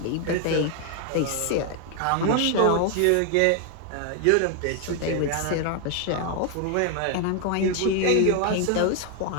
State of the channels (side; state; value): both; different; correlation 0.00